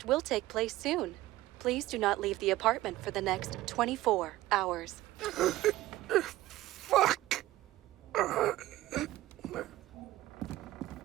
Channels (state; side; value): quieter; left; 16.3 dB